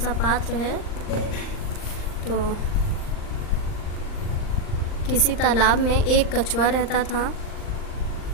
पात्र है। तो किसी तालाब में एक कछुआ रहता था।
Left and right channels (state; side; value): late; right; 39 ms